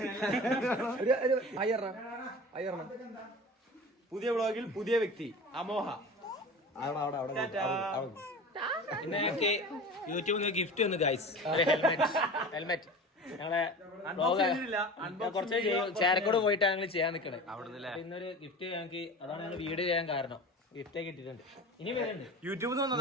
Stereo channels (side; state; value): both; normal; correlation 0.34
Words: പുതിയ വ്ളോഗിൽ പുതിയ വ്യക്തി അമോഹ. പിന്നെ ഞങ്ങൾക്ക് യൂട്യൂബിൽ നിന്ന് ഗിഫ്റ്റ് വന്നു ഗൈസ്. ഹെൽമെറ്റ് ഞങ്ങളെ കുറച്ച് ചേരക്കോട് പോയിട്ടാണ് ഞങ്ങൾ ചെയ്യാൻ നിൽക്കണേ. ഇന്നൊരു ഗിഫ്റ്റ് ഞങ്ങൾക്ക്, അതാണ് ഞങ്ങൾ വീഡിയോ ചെയ്യാൻ കാരണം. ഗിഫ്റ്റ് കിട്ടിയിട്ടുണ്ട്. ഇനി വരുന്നുണ്ട് യൂട്യൂബിൽ